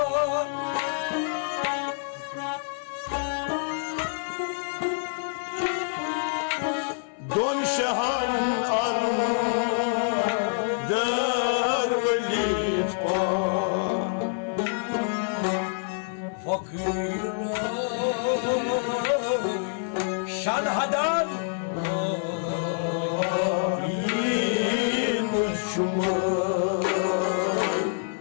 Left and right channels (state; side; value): silent; right; 58 dB below the other